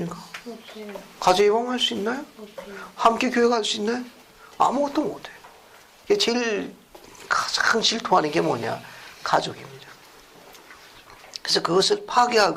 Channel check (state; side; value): identical; both; correlation 1.00